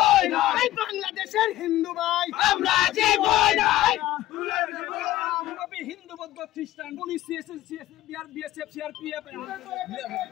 না, এই বাংলাদেশের হিন্দু ভাই আমরা জীবই না। হিন্দু বৌদ্ধ খ্রিস্টান পুলিশ বিএসএফ সিআরপিএফ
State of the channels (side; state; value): right; quieter; 15.2 dB